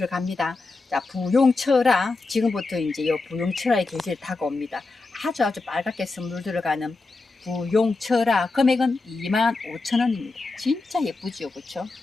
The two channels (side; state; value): right; quieter; 3.6 dB